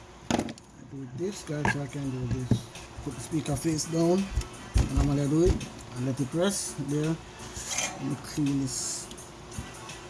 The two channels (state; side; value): identical; both; correlation 1.00